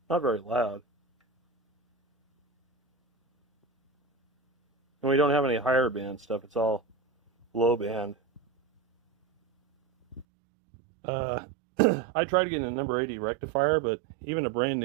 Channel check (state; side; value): drops out; left; at 10.2 s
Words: Not very loud. And we don't have any higher band stuff. It's all low band. I tried getting a number 80 rectifier, but even a brand